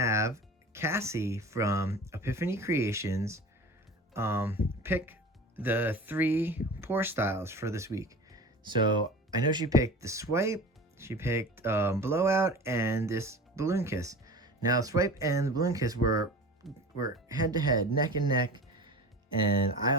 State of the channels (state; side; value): normal; both; correlation 0.36